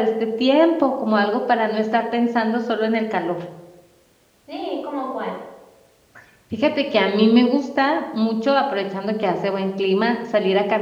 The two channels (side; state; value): both; identical; correlation 1.00